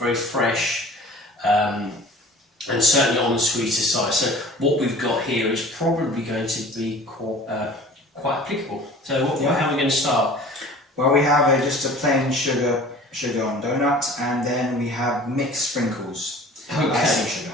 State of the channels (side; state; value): both; normal; correlation 0.45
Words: fresh, and certainly on the sweeter side. So what we've got here is probably going to be quite applicable. So how are we going to start? Well, we have just a plain sugar on donut, and then we have mixed sprinkles. Okay. Icing